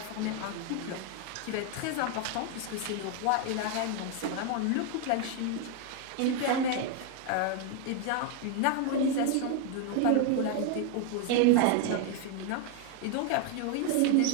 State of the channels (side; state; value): both; different; correlation 0.01